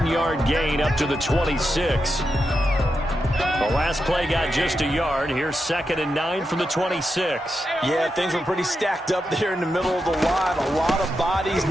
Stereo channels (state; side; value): normal; both; correlation 0.87